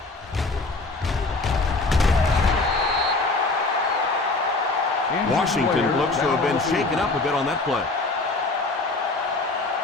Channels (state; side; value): quieter; right; 3.4 dB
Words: Washington looks to have been shaken up a bit on that play.